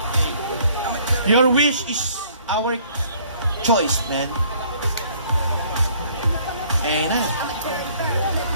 Your wish is our choice, man. Ayan na.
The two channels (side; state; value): both; inverted; correlation -0.59